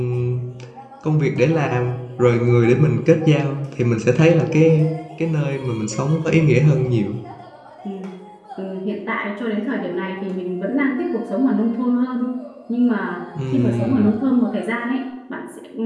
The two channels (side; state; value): both; identical; correlation 1.00